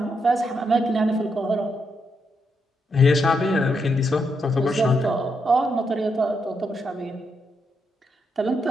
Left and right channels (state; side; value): normal; both; correlation 0.81